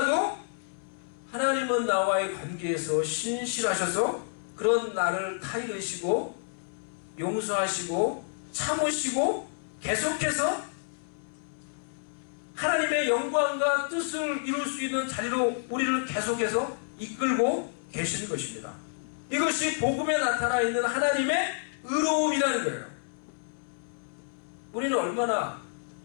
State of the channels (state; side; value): silent; right; 58 dB below the other